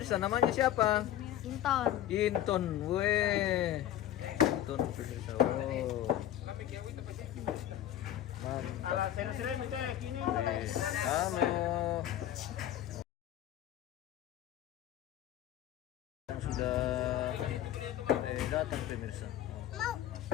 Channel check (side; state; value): right; quieter; 12.1 dB